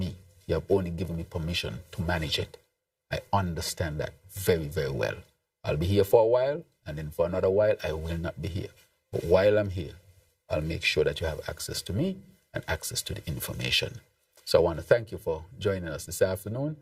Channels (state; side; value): identical; both; correlation 1.00